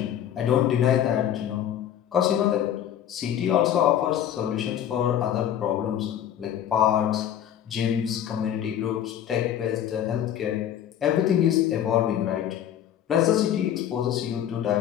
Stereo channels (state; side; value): quieter; right; 10.4 dB